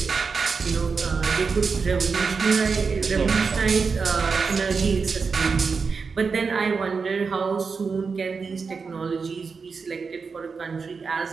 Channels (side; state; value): left; quieter; 5.1 dB